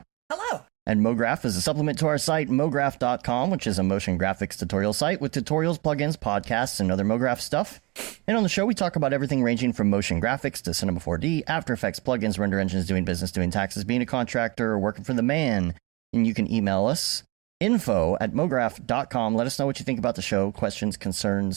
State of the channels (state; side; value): quieter; left; 23.0 dB